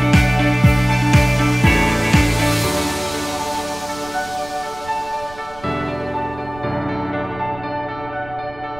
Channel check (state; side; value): noise; right; rumble, 20 dB below the sound